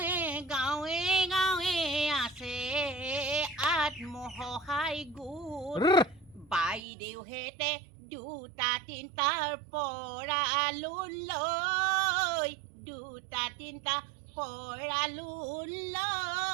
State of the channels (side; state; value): left; drops out; at 6.8 s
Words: গাঁৱে গাঁৱে আছে আত্মসহায়ক গোট বাইদেউহেঁতে দুটা তিনিটাৰ পৰা লোন লৈ দুটা তিনিটা পৰা লোন